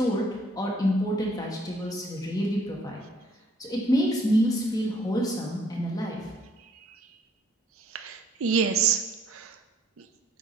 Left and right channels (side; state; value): both; normal; correlation 0.63